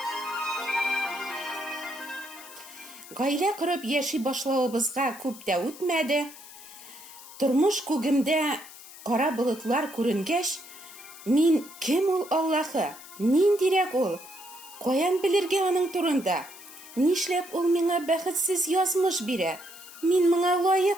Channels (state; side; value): noise; left; hiss, 17 dB below the sound